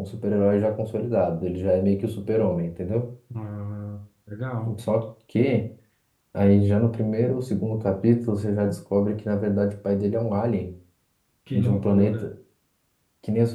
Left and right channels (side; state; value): both; identical; correlation 1.00